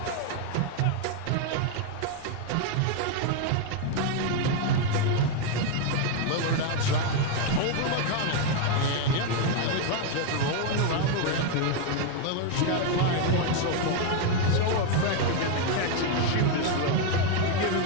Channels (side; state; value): both; different; correlation 0.01